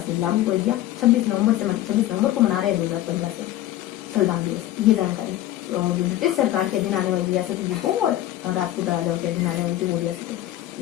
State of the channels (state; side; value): quieter; right; 14.1 dB